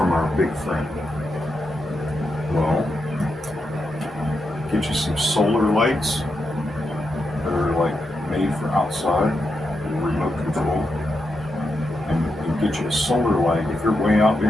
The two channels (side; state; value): both; normal; correlation 0.85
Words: our big friend? Well, get you some solar lights that are like made for outside, remote control, and get you a solar light. If you're way out there